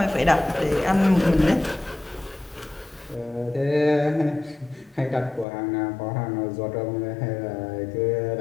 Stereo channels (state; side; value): drops out; right; at 5.5 s